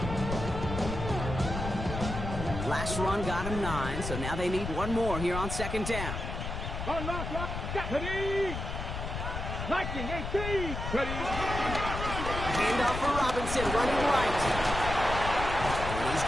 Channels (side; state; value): left; noise; rumble, 5 dB below the sound